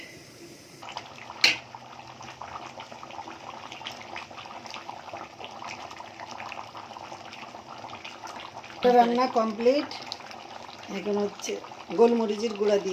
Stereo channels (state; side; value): identical; both; correlation 1.00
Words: রান্না কমপ্লিট। এখন হচ্ছে গোলমরিচের গুঁড়া